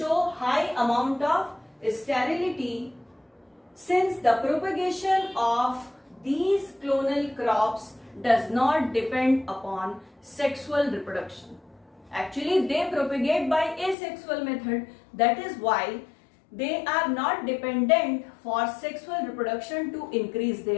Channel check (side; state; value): right; drops out; at 14.0 s